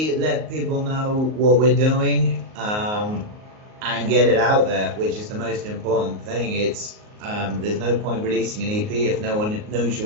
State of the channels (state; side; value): late; left; 38 ms